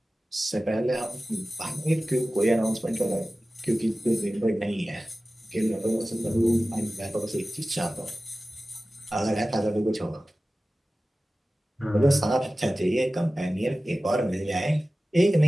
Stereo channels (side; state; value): both; normal; correlation 0.96